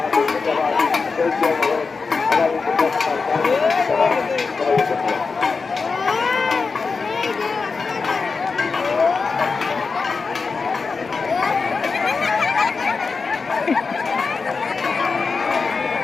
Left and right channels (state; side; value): quieter; right; 4.7 dB